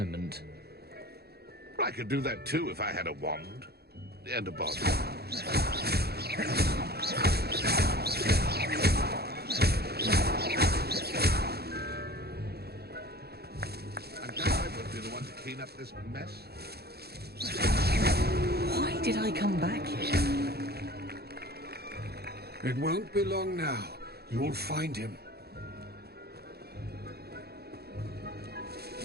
I could do that too if I had a wand. And a bottle. I'm glad I would be the one to clean up this mess. Why did I come back here? It won't be long now. You'll find him.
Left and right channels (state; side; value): late; left; 0.46 ms